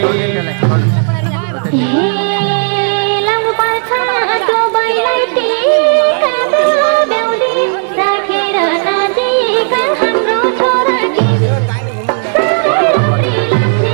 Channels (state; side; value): silent; left; digital silence